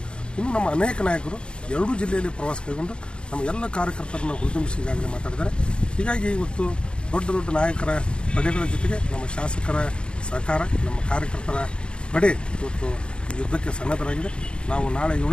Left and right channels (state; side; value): late; right; 0.054 ms